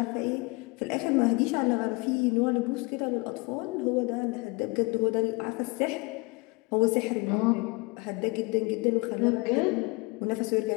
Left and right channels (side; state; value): right; quieter; 26.9 dB